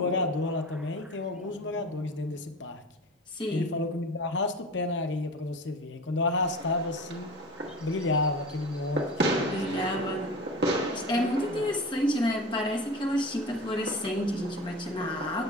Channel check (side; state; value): both; normal; correlation 0.34